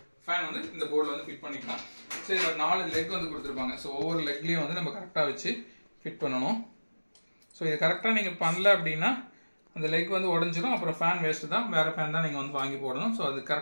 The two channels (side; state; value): both; inverted; correlation -1.00